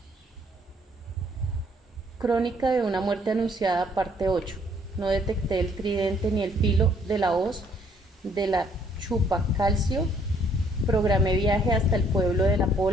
Crónica de una muerte anunciada, parte 8. No detecté el tridente ni el filo de la hoz de la chupacalcio. Programé viaje hasta el pueblo de La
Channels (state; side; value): normal; both; correlation 0.64